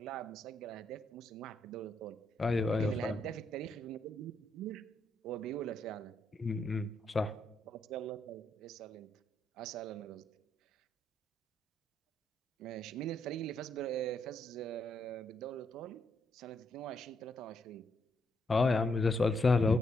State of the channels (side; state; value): both; normal; correlation 0.77